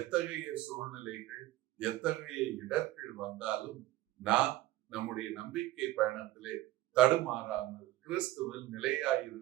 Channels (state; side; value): quieter; left; 16.0 dB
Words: சூழ்நிலைகள், எத்தகைய இடர்கள் வந்தாலும் நாம் நம்முடைய நம்பிக்கை பயணத்திலே தடுமாறாமல் கிறிஸ்துவில்